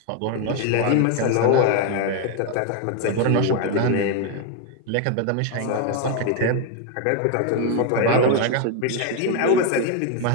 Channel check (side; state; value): both; different; correlation 0.01